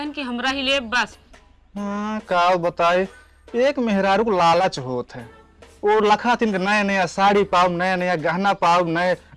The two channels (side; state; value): both; identical; correlation 1.00